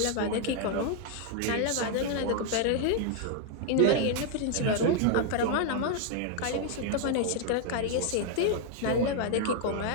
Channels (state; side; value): different; both; correlation 0.00